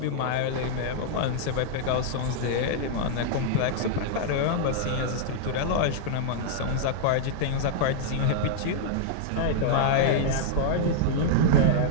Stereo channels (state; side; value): different; both; correlation -0.01